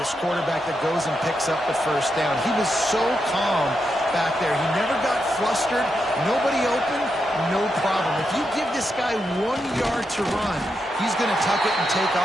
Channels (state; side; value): normal; both; correlation 0.85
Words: quarterback that goes and picks up the first down. He was so calm back there. He never got flustered. Nobody open, no problem. If you give this guy 1 yard to run, he's going to tuck it and take